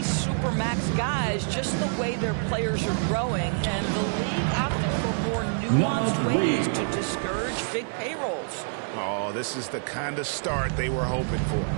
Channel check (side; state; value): left; silent; digital silence